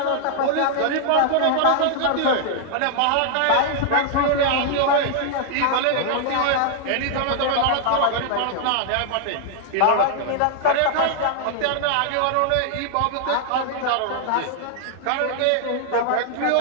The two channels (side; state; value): both; different; correlation -0.01